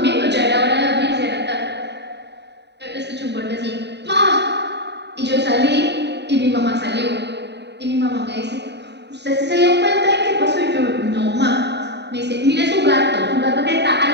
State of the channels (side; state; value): left; late; 0.50 ms